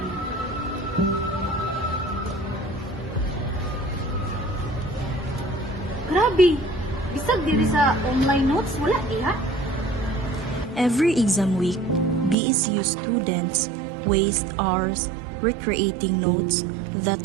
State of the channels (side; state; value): left; drops out; at 12.4 s